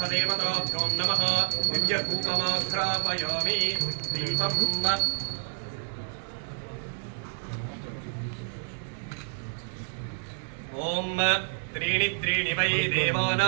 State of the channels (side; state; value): left; silent; 59 dB below the other